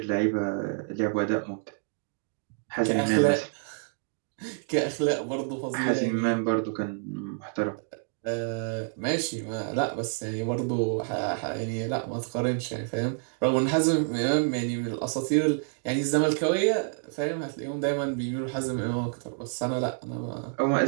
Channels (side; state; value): left; silent; 56 dB below the other